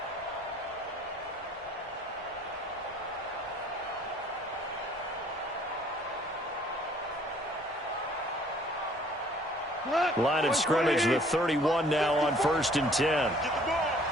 Line of scrimmage, the 31 now on 1st and 10. Get the ball.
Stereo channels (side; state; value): both; normal; correlation 0.57